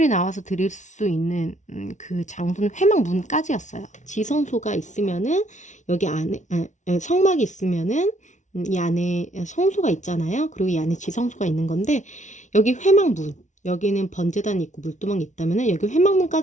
나와서 드릴 수 있는 그 장소는 회막 문까지였어요. 지성소가 있으면은 여기 안에 성막이 있으면은 이 안에 성소가 있잖아요. 그리고 이 안에 지성소가 있는 건데, 여기 회막문, 여기는 번제단이 있고 물두멍이 있다면은 여기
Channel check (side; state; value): right; late; 0.36 ms